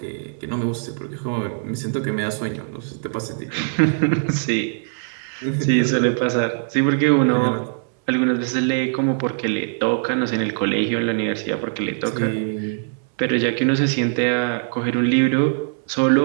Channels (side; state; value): left; silent; 64 dB below the other